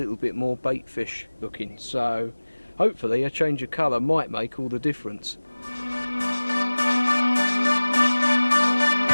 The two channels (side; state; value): both; inverted; correlation -1.00